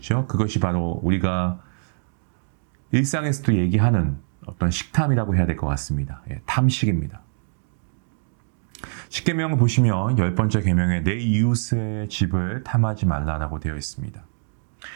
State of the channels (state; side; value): silent; left; digital silence